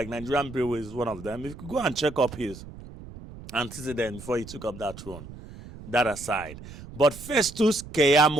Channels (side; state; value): right; noise; rumble, 15 dB below the sound